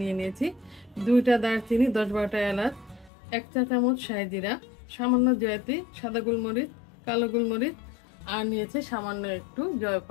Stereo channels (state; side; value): drops out; right; at 3.1 s